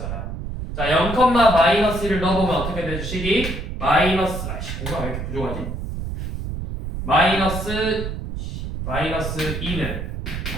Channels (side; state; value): right; noise; rumble, 6 dB below the sound